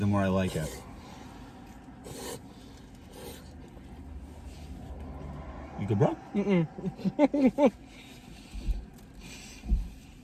more I like it. You good, bro?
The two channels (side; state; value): both; identical; correlation 1.00